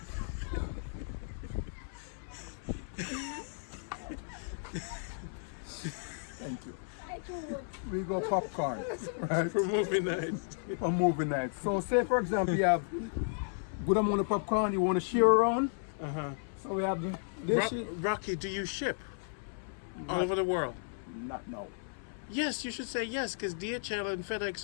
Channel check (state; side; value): silent; right; 55 dB below the other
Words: Thank you. We go popcorn, right? For movie nights. For movie nights. So say for example you have good amount of popcorn you want to share around. So we have this. Rocky, do you ship all over the world? Not now. Yes, you should say yes, because DHL and